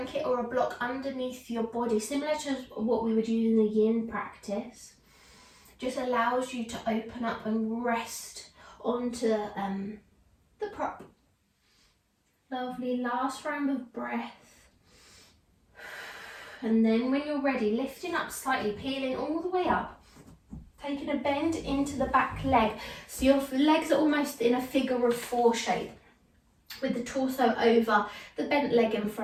or a block underneath your body, similar to what we would use in the yin practice. Just allows you to open up and rest onto the prop. Lovely, last round of breath. And then when you're ready, lifting up slightly, peeling all the way up, taking a bend into the back leg. So your legs are almost in a figure of 4 shape, with the torso over the bent leg in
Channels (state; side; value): identical; both; correlation 1.00